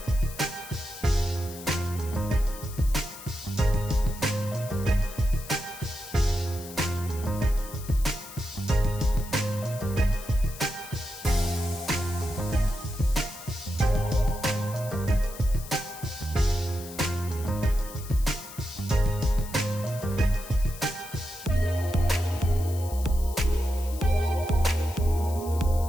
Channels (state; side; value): noise; left; hiss, 15 dB below the sound